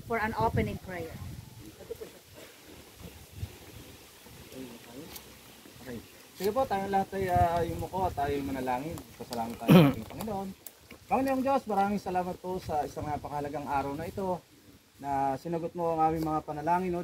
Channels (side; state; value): both; identical; correlation 1.00